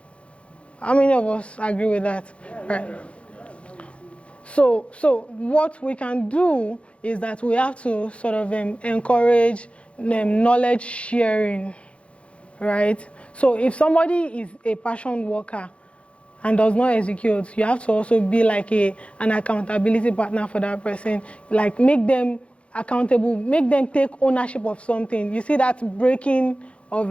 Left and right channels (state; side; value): late; right; 0.061 ms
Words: How many of us agree with that? Right. So what we can do is that we have to sort of encourage knowledge sharing, right? So if somebody is a passion worker and does not execute, you have to also be like an accountability partner for that person. Like make them accountable, make them take ownership of something. You see that breaking